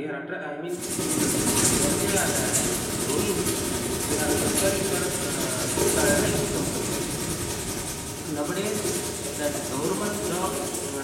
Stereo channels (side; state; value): both; identical; correlation 1.00